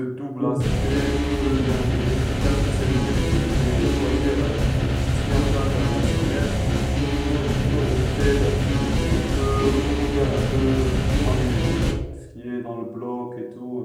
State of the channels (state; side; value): identical; both; correlation 1.00